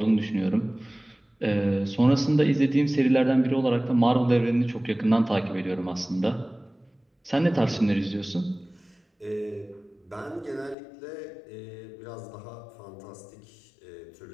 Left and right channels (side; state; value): right; drops out; at 10.8 s